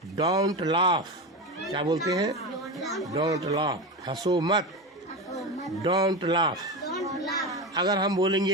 Don't laugh. क्या बोलते हैं? Don't laugh. हंसो मत, डोंट लाफ। अगर हम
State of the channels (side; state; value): both; normal; correlation 0.20